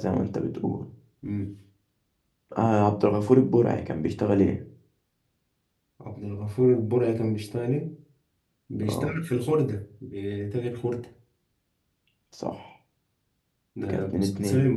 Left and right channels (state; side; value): identical; both; correlation 1.00